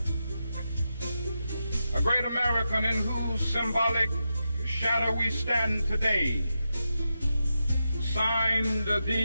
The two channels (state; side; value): inverted; both; correlation -0.88